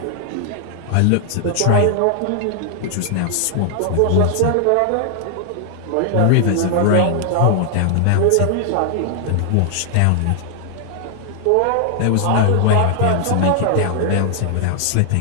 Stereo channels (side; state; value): both; different; correlation 0.00